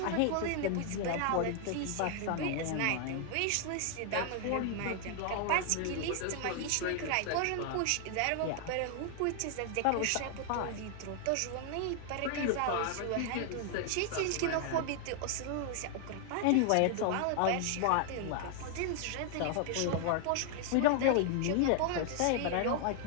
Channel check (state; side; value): different; both; correlation 0.00